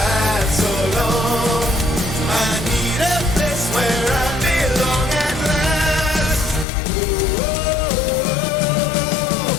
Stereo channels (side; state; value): right; drops out; at 6.7 s